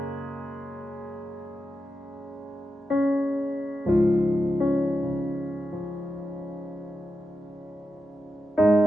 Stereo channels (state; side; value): normal; both; correlation 0.89